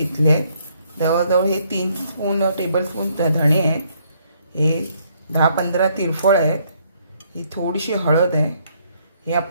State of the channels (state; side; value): inverted; both; correlation -0.69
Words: आहेत. जवळजवळ हे 3 टेबलस्पून धणे आहेत. हे 10-15 तिरफळ आहेत. ही थोडीशी हळद आहे. हे